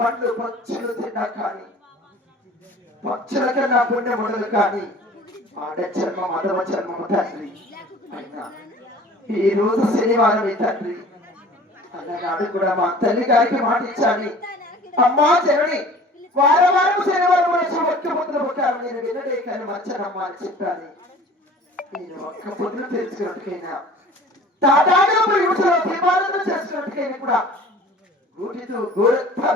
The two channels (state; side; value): normal; both; correlation 0.46